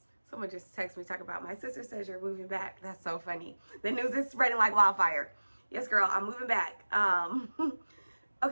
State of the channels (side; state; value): both; inverted; correlation -1.00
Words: Someone just texted me talking about, my sister says you're moving back. That's so funny. The news is spreading like wildfire. Yes, girl, I'm moving back.